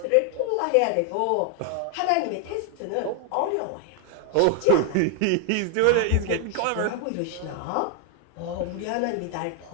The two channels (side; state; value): both; different; correlation 0.00